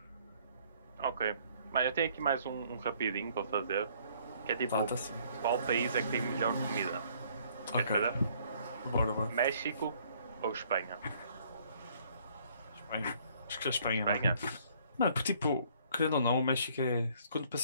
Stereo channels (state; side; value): inverted; both; correlation -0.61